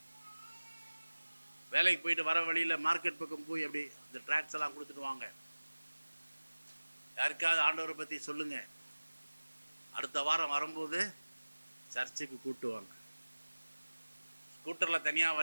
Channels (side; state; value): both; inverted; correlation -1.00